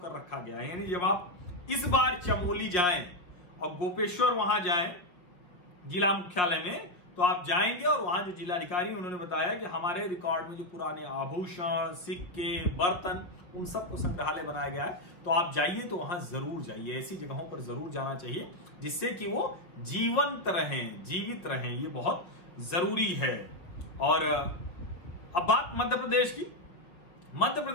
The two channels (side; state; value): right; late; 5.4 ms